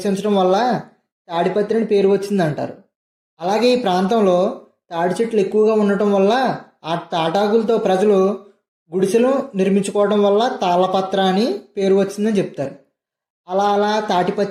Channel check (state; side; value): identical; both; correlation 1.00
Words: వల్ల తాడిపత్రి అని పేరు వచ్చిందంటారు. అలాగే ఈ ప్రాంతంలో తాడి చెట్లు ఎక్కువగా ఉండటం వల్ల ఆ తాటాకులతో ప్రజలు గుడిసెలు నిర్మించుకోవడం వల్ల తాళపత్ర అని పేరు వచ్చిందని చెప్తారు.